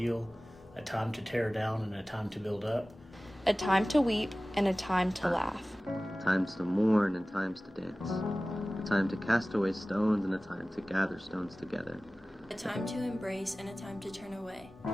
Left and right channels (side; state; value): both; normal; correlation 0.97